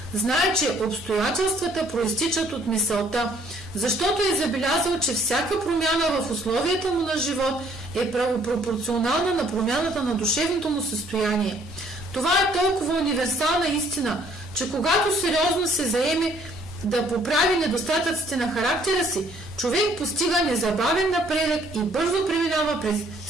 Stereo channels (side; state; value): both; normal; correlation 0.62